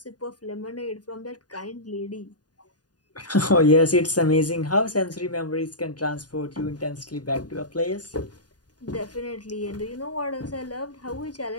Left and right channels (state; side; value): late; right; 0.69 ms